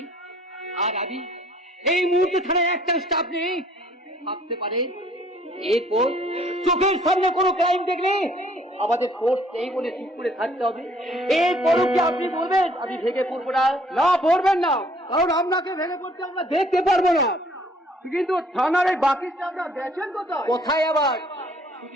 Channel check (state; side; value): normal; both; correlation 0.60